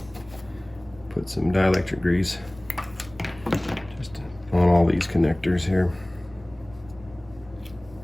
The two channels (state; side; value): noise; right; rumble, 22 dB below the sound